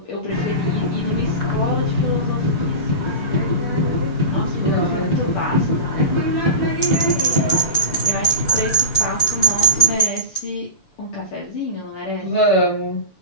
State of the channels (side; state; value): right; late; 6.9 ms